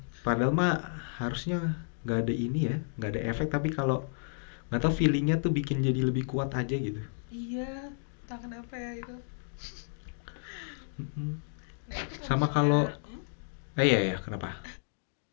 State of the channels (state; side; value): silent; right; digital silence